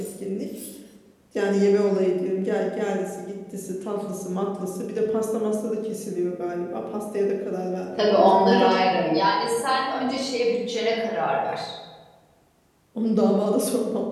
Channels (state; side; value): identical; both; correlation 1.00